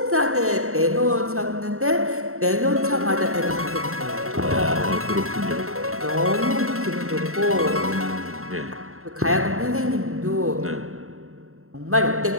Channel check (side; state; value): left; late; 0.63 ms